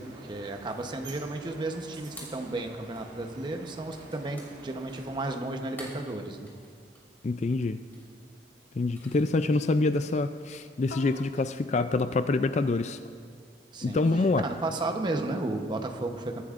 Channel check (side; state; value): both; normal; correlation 0.63